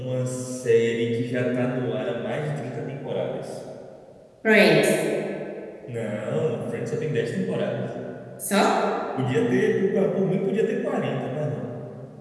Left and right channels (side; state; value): both; identical; correlation 1.00